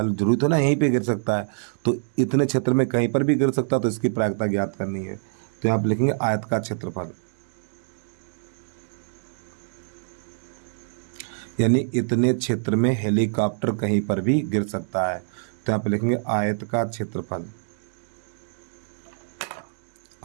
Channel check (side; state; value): left; silent; digital silence